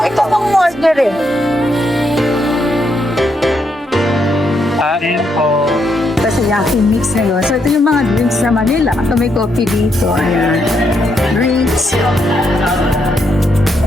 ito pang order eh? Yaki Mix ngayon. So, ito yung mga drinks sa Manila. Ito may coffee dito. Ayan. Drinks.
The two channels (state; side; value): normal; both; correlation 0.78